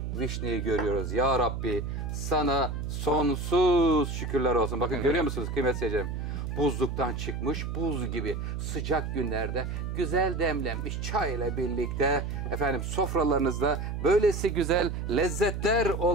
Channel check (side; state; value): right; noise; hum, 4 dB below the sound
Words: vişneyi görüyoruz. Ya Rabbi, sana sonsuz şükürler olsun. Bakın, görüyor musunuz kıymetli seyircilerim? Buzluktan çıkmış buz gibi sıcak günlerde güzel demlenmiş çay ile birlikte efendim sofralarınızda böylesi güzel lezzetler